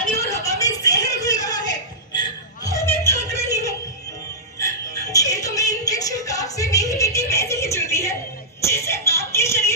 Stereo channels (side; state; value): both; normal; correlation -0.16